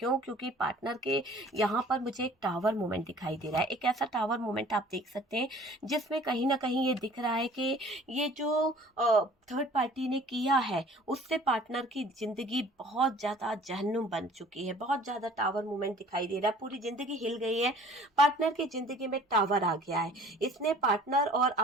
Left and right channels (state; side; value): normal; both; correlation 0.50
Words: क्योंकि पार्टनर के यहाँ पर मुझे एक टावर मूवमेंट दिखाई दे रहा है, एक ऐसा टावर मूवमेंट आप देख सकते हैं जिसमें कहीं ना कहीं ये दिख रहा है कि ये जो थर्ड पार्टी ने किया है, उससे पार्टनर की जिंदगी बहुत ज्यादा जहन्नुम बन चुकी है। बहुत ज्यादा टावर मूवमेंट दिखाई दे रहा है, पूरी जिंदगी हिल गई है, पार्टनर की जिंदगी में टावर आ गया है। इसने पार्टनर और